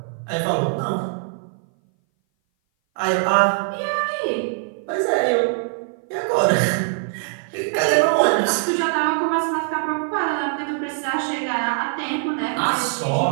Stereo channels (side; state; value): left; silent; 58 dB below the other